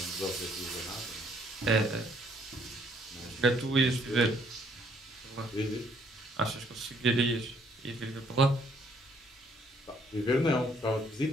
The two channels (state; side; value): normal; both; correlation 0.66